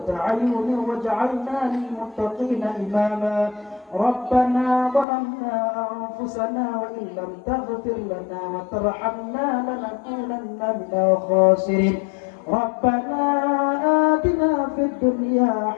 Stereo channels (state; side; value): drops out; right; at 5.1 s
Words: أعين واجعلنا للمتقين إماما. ربنا ظلمنا أنفسنا وإن لم تغفر لنا وترحمنا لنكونن من الخاسرين. ربنا آتنا في الدنيا